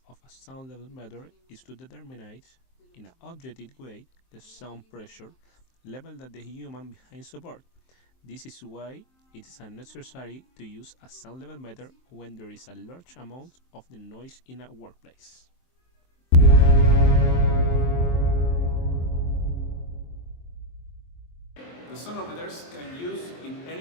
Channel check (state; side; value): late; right; 23 ms